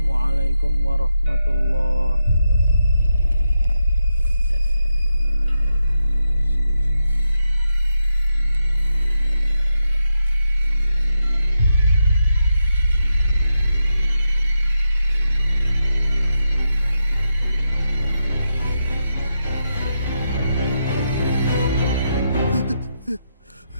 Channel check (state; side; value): inverted; both; correlation -0.85